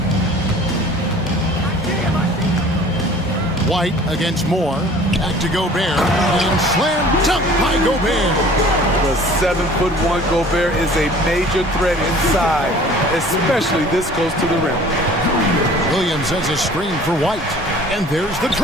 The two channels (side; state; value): both; normal; correlation 0.48